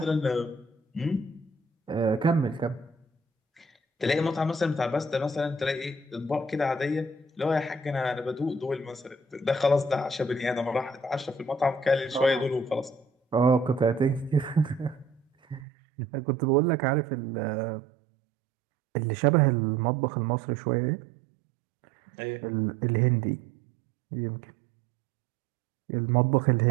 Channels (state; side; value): drops out; left; at 15.7 s